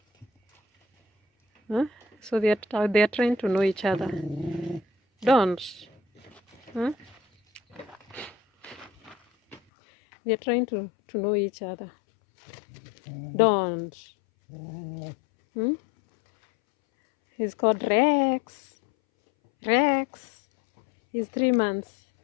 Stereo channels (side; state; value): right; drops out; at 9.6 s